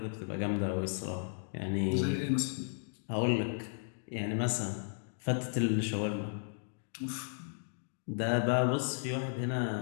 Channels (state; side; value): silent; right; digital silence